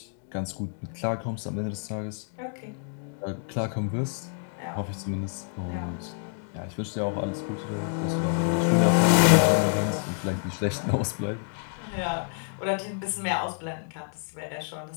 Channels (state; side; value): silent; right; 57 dB below the other